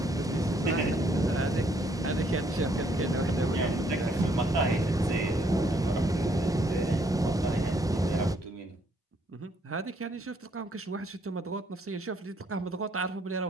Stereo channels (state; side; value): normal; both; correlation 0.68